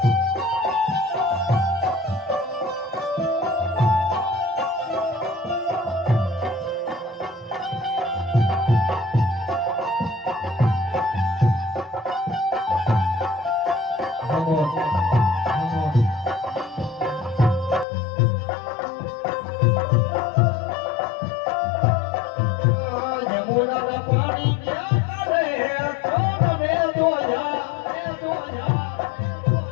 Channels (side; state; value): right; drops out; at 17.9 s